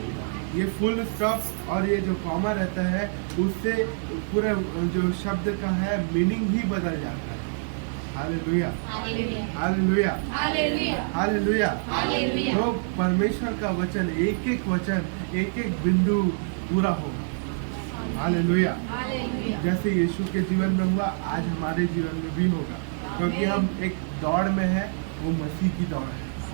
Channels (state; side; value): silent; left; digital silence